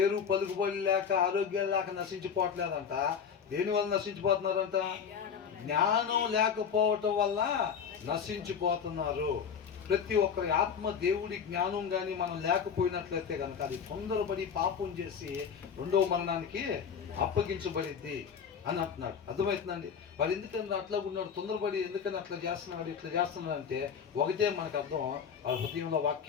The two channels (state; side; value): quieter; right; 7.0 dB